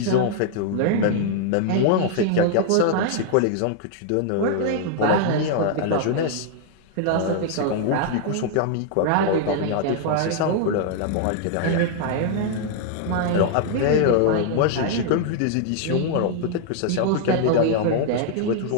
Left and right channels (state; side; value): different; both; correlation -0.01